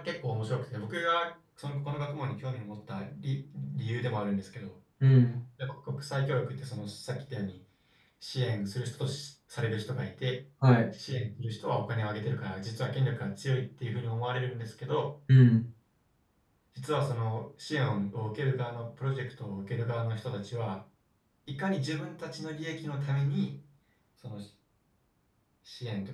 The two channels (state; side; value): identical; both; correlation 1.00